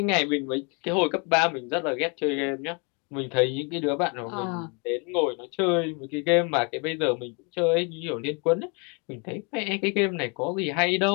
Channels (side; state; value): right; quieter; 33.6 dB